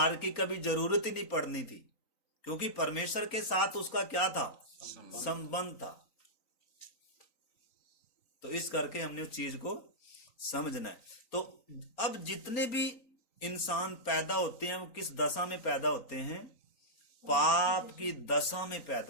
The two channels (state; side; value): late; right; 3.9 ms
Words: की कभी जरूरत ही नहीं पड़नी थी, क्योंकि परमेश्वर के साथ उसका क्या था? संबंध था। तो इस करके हमने उस चीज को समझना है। तो अब जितने भी इंसान पैदा होते हैं, वो किस दशा में पैदा होते हैं? पाप की दशा में